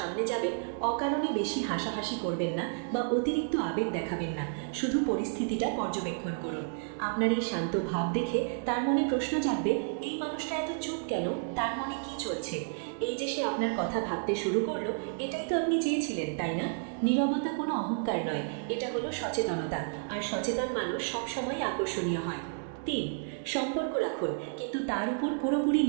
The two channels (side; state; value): left; silent; digital silence